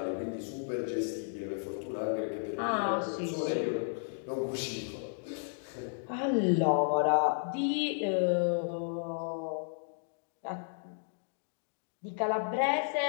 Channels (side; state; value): right; silent; digital silence